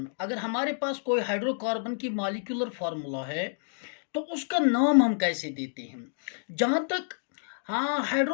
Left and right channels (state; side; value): silent; right; digital silence